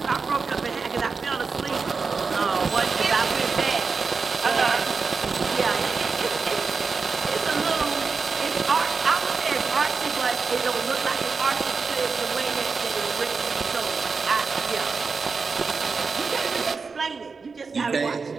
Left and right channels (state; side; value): quieter; left; 4.8 dB